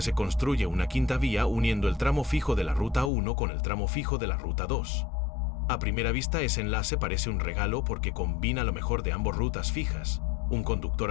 se construye una quinta vía uniendo el tramo fijo de la ruta 1 con el tramo fijo de la ruta 2. A primera vista, ese enlace parece un regalo porque combina lo mejor de ambas rutas fijas. Un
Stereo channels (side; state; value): right; drops out; at 3.1 s